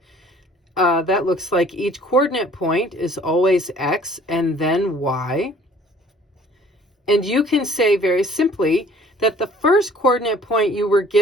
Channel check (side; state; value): both; normal; correlation 0.54